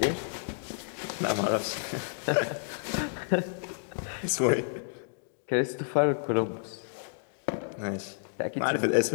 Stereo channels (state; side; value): silent; right; digital silence